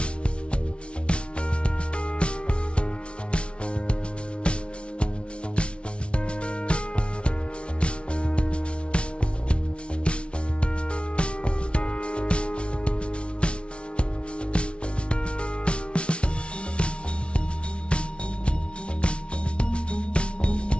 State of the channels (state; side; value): late; right; 0.059 ms